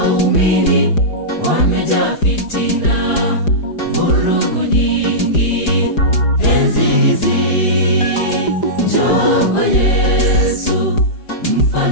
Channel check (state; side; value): late; right; 4.9 ms